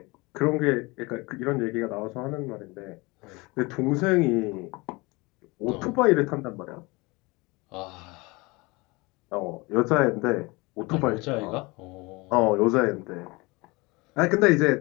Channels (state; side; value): quieter; right; 24.9 dB